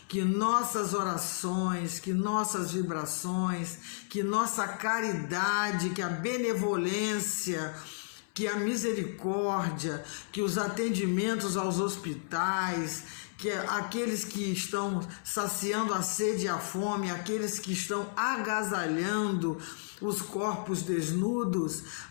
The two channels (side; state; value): right; silent; 56 dB below the other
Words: Que nossas orações, que nossas vibrações, que nossa caridade, que a benevolência, que a misericórdia, que os atendimentos aos hospitais, que aqueles que estão saciando a sede e a fome, aqueles que estão agasalhando os corpos desnudos,